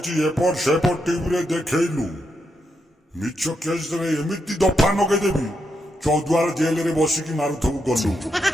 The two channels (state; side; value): normal; both; correlation 0.82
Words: एपट सेपट टीवी रे देखैलु मिछ केस रे एमिति दफा नगे देबी चौद्वार जेल रे बसी की मारुथबु गलु।